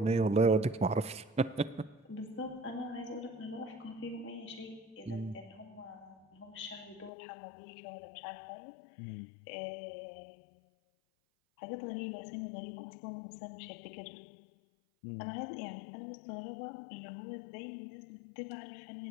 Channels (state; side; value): drops out; right; at 7.1 s